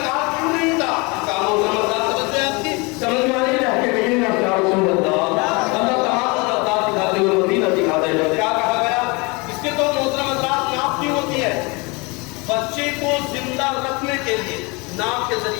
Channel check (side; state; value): right; quieter; 27.7 dB